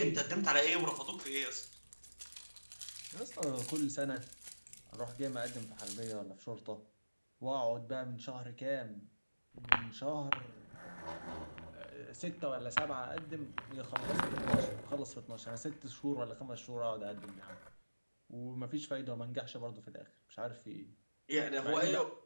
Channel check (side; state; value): both; inverted; correlation -1.00